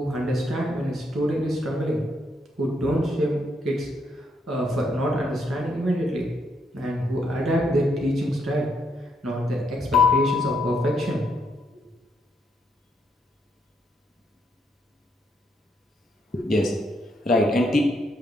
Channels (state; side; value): normal; both; correlation 0.75